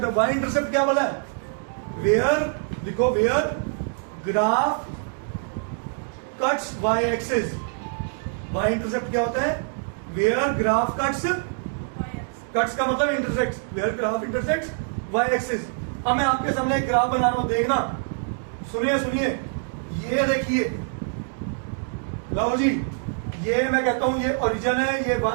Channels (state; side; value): silent; left; 62 dB below the other